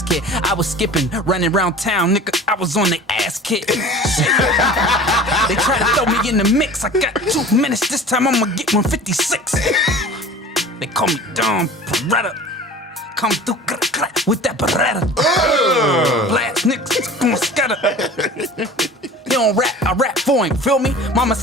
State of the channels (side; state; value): both; normal; correlation 0.41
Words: kid. I was skipping, running around town, nigga. I was on the ass kit. Shit. They try to throw me in the mix. I got 2 minutes. This time I'ma get 156. They call me Dom Peretta. Come through with that Beretta. Blast niggas, gon' scatter. He don't rap, I rap for him, feel me? Mama